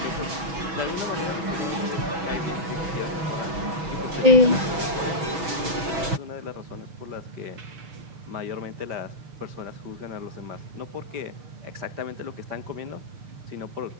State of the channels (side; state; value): left; late; 6.2 ms